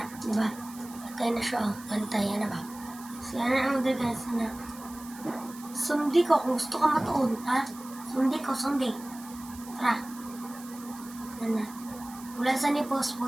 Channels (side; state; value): right; noise; hiss, 18 dB below the sound